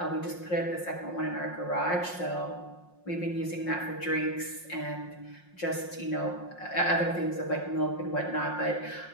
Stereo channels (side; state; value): right; late; 5.6 ms